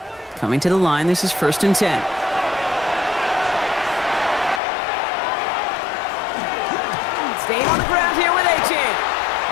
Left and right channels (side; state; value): right; drops out; at 4.6 s